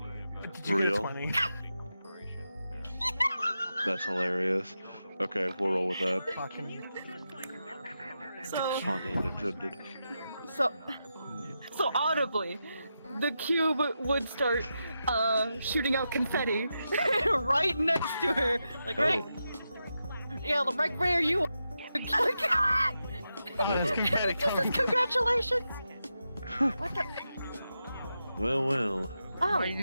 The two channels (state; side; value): inverted; both; correlation -0.88